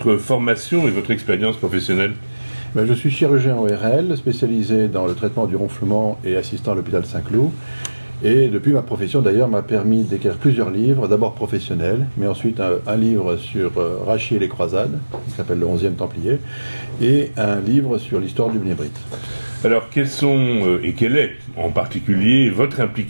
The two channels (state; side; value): inverted; both; correlation -1.00